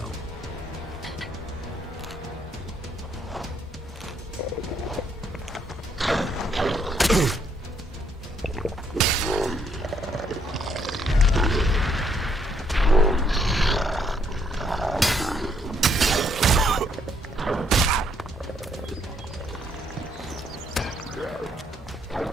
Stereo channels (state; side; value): normal; both; correlation 0.70